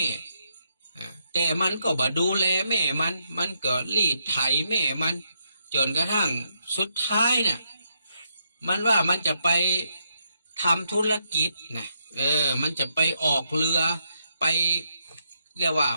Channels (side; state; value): both; inverted; correlation -0.78